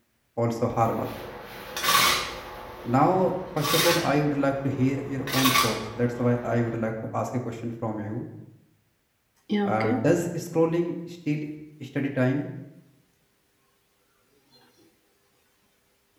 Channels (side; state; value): both; identical; correlation 1.00